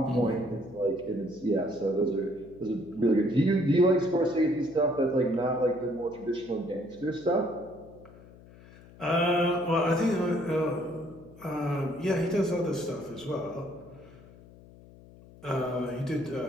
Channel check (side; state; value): left; noise; hum, 21 dB below the sound